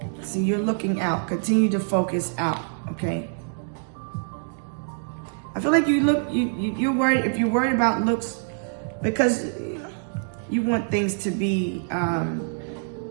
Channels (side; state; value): left; silent; digital silence